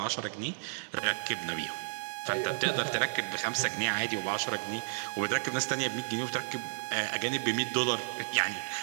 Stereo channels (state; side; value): silent; left; digital silence